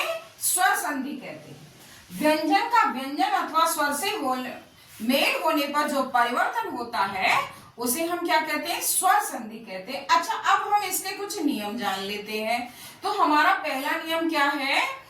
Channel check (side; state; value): both; identical; correlation 1.00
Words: स्वर संधि कहते हैं। व्यंजन का व्यंजन अथवा स्वर से मेल होने पर जो परिवर्तन होता है उसे हम क्या कहते हैं? स्वर संधि कहते हैं। अच्छा, अब हम इसके कुछ नियम जान लेते हैं। तो हमारा पहला नियम क्या है